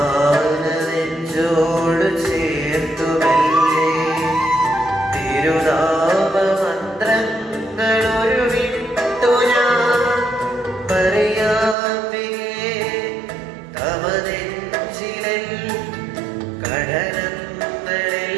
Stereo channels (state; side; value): drops out; left; at 11.8 s